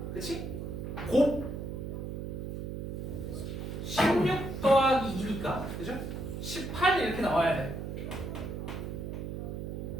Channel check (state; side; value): noise; right; hum, 5 dB below the sound